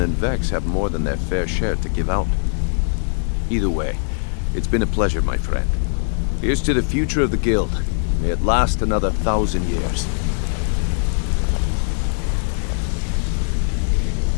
and Vex have more than their fair share to give out. Either way, it's been a pleasure, my friend. Here's to the future of the guild. May it last another 1,000 years.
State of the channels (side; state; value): right; silent; 65 dB below the other